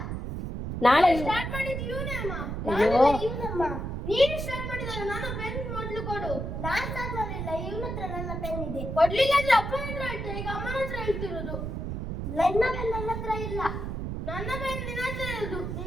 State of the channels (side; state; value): right; noise; rumble, 4 dB below the sound